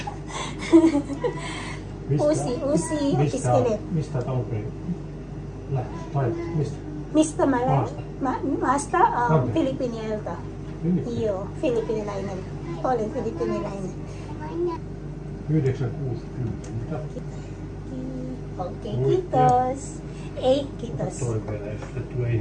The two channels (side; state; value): both; identical; correlation 1.00